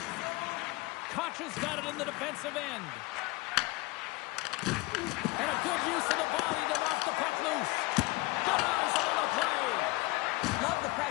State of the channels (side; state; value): right; quieter; 23.0 dB